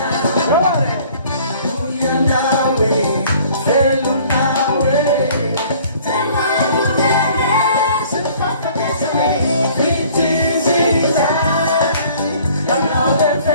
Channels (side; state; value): both; inverted; correlation -0.54